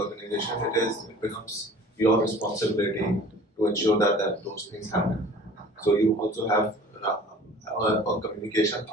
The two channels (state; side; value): normal; both; correlation 0.46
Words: it becomes your responsibility to ensure that those things happen. So you also have a communication,